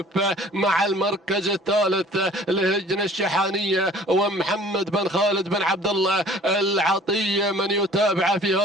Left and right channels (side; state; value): both; normal; correlation 0.50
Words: مع المركز الثالث لهجن الشحانية ومحمد بن خالد بن عبد الله العطية من يتابع في